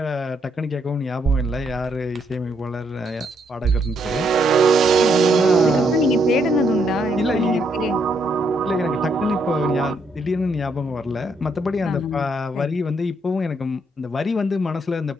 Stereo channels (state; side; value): normal; both; correlation 0.74